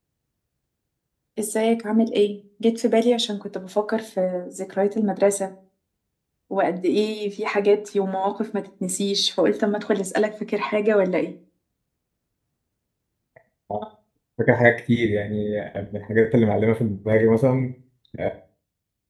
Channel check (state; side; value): identical; both; correlation 1.00